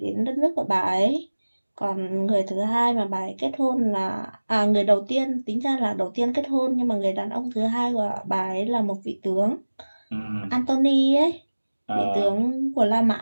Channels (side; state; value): both; inverted; correlation -1.00